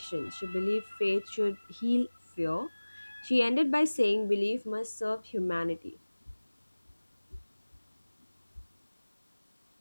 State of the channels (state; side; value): inverted; both; correlation -1.00